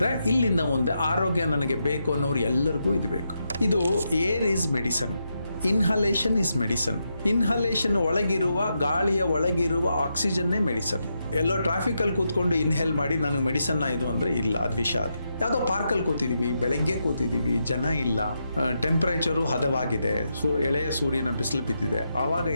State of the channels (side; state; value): both; inverted; correlation -0.84